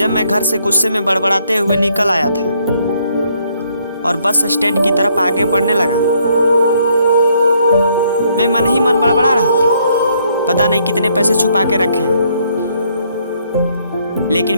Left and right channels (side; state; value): both; inverted; correlation -0.69